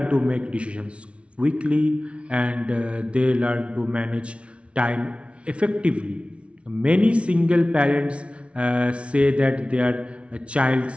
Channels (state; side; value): late; left; 0.061 ms